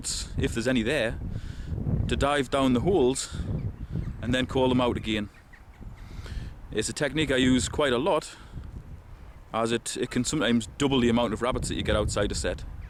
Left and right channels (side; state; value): both; identical; correlation 1.00